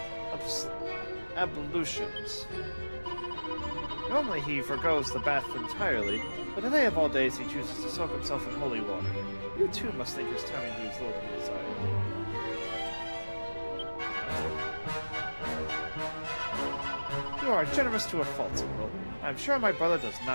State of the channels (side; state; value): both; inverted; correlation -1.00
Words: ablutions. Normally he forgoes the bath entirely, but today of all days he chooses to soak himself in holy water. You too must think his timing leaves little to be desired. You are generous to a fault, Squirrel. I am sure my brother does